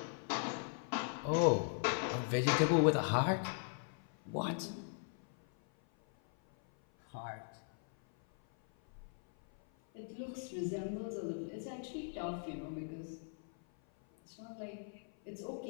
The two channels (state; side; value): silent; right; 52 dB below the other